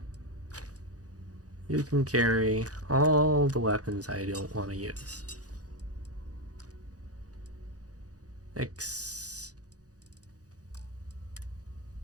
You can carry all the weapons I don't want to use.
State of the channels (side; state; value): left; late; 0.67 ms